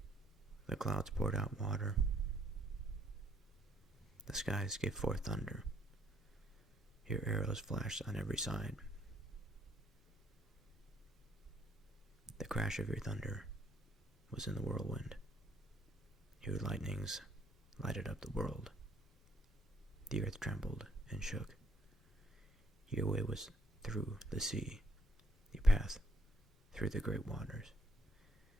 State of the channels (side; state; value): both; normal; correlation 0.68